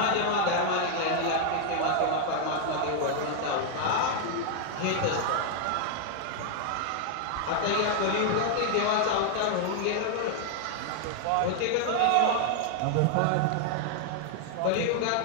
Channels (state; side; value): different; both; correlation 0.00